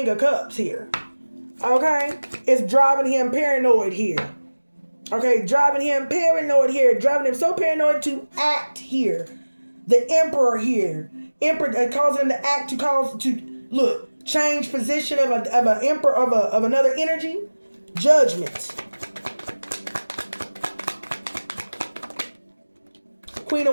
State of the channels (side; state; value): both; inverted; correlation -1.00